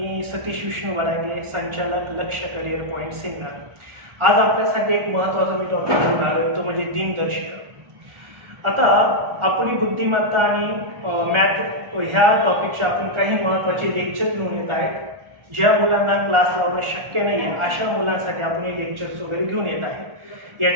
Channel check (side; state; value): left; late; 1.4 ms